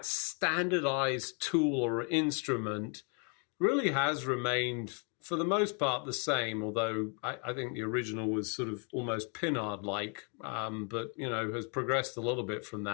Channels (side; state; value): right; quieter; 37.4 dB